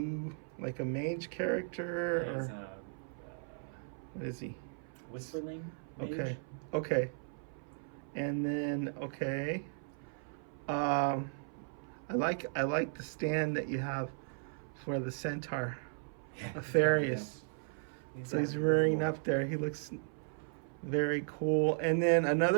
like a mage character? There's Or what is he? Whisperling Mage. Okay. And then, okay. I like the stand that you have for the centaur, Aetherius. So he's rearing up there. He looks very cool. And then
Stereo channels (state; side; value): silent; left; 54 dB below the other